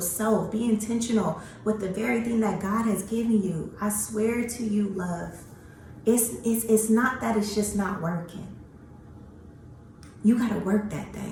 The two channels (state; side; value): identical; both; correlation 1.00